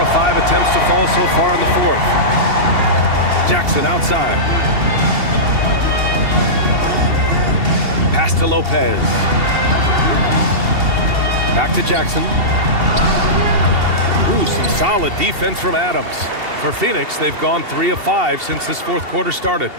5 attempts to fall so far in the fourth. Jackson outside. Pass to Lopez. Back to Jackson. Ooh, some solid defense from Adams. For Phoenix, they've gone 3 of 5 since this fourth quarter started.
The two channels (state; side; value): late; left; 2.7 ms